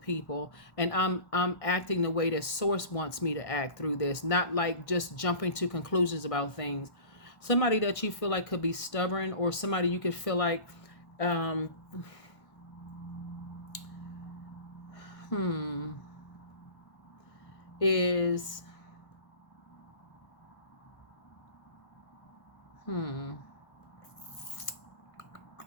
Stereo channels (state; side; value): late; right; 1.6 ms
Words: and I'm acting the way that Source wants me to act through this, not like just jumping to conclusions about things. Somebody that you feel like could be stubborn, or somebody you could feel like is